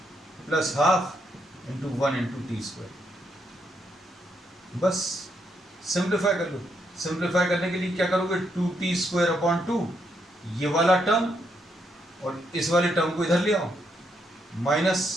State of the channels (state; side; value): normal; both; correlation 0.77